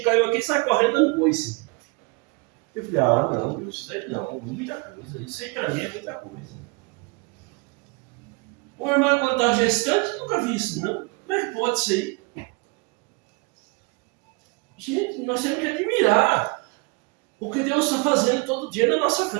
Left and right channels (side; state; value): left; quieter; 29.1 dB